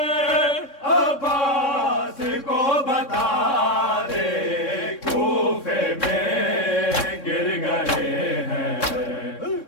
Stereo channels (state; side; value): late; right; 3.6 ms